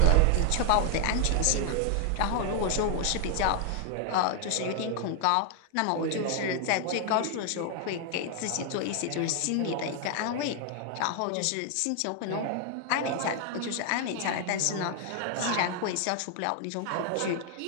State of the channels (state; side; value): different; both; correlation 0.00